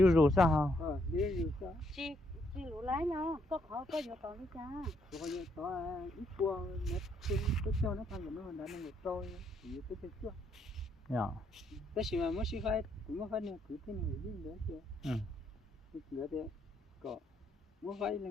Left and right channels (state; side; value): normal; both; correlation 0.73